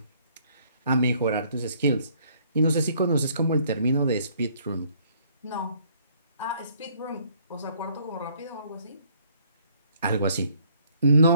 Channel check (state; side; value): inverted; both; correlation -0.63